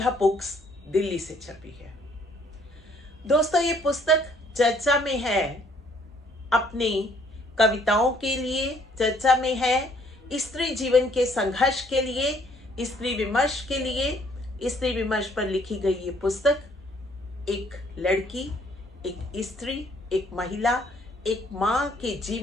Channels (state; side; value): normal; both; correlation 0.63